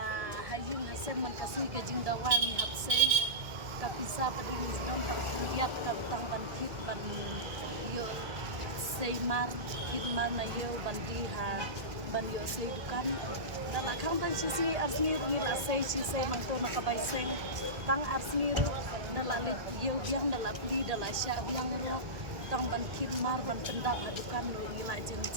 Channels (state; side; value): late; left; 1.7 ms